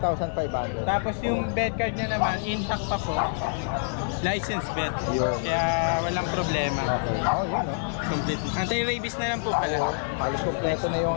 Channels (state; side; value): silent; right; digital silence